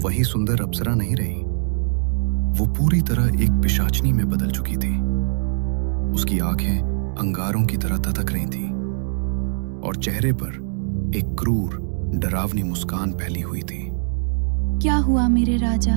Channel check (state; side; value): silent; left; digital silence